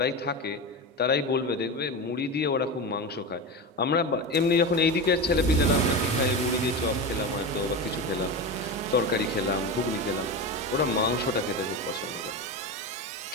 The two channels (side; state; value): both; normal; correlation 0.22